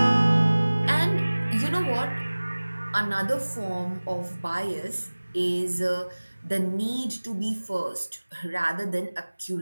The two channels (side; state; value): both; inverted; correlation -1.00